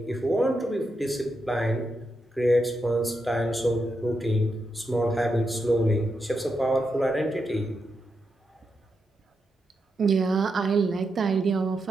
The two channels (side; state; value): both; normal; correlation 0.85